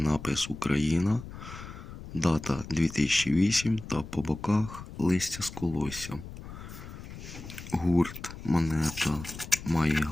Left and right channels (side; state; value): left; noise; rumble, 12 dB below the sound